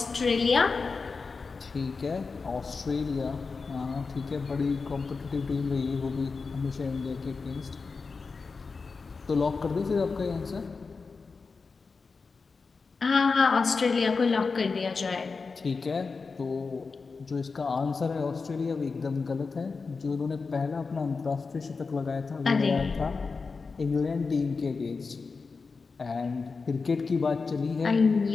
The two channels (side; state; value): right; quieter; 4.5 dB